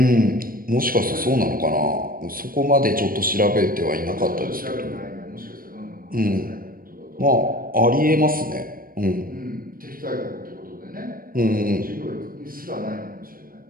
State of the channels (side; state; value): left; late; 0.41 ms